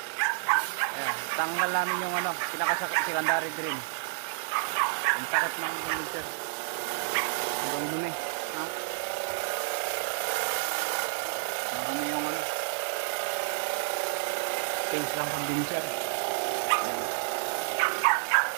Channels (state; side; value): silent; left; digital silence